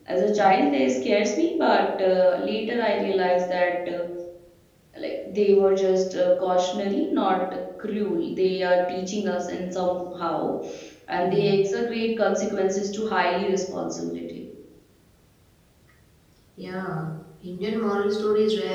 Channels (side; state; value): both; identical; correlation 1.00